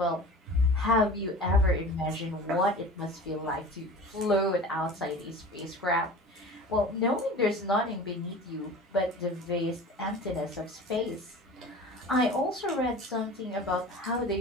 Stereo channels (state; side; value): normal; both; correlation 0.38